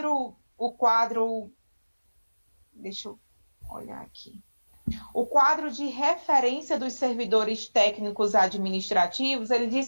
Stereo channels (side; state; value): both; inverted; correlation -1.00